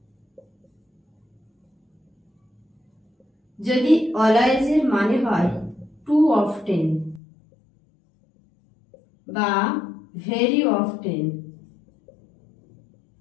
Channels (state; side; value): drops out; right; at 7.2 s